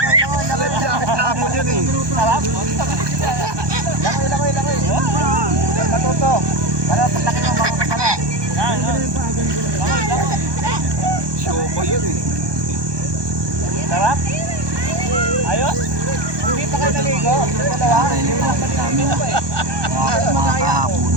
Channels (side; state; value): left; late; 1.2 ms